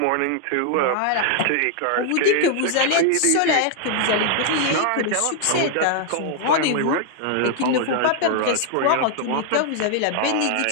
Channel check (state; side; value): different; both; correlation 0.00